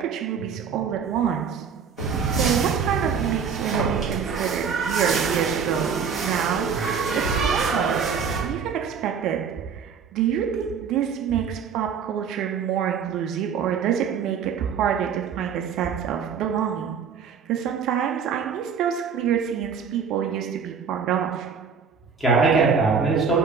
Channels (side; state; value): left; quieter; 6.5 dB